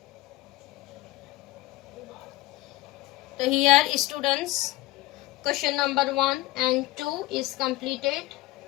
So here students, question number 1 and 2 is completed.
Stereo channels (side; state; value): right; quieter; 17.7 dB